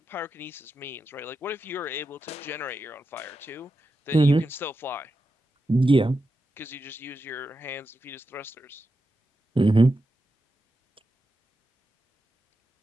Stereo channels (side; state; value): both; normal; correlation 0.89